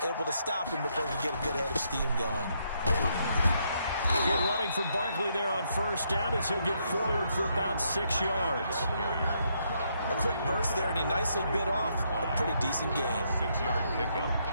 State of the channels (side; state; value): both; inverted; correlation -0.75